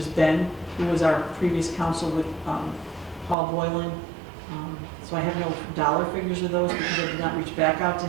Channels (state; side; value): drops out; left; at 3.4 s